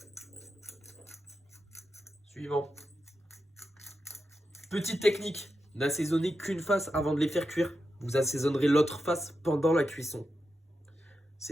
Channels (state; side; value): normal; both; correlation 0.88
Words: Suivant. Petite technique, n'assaisonnez qu'une face avant de les faire cuire. Vous assaisonnerez l'autre face pendant la cuisson.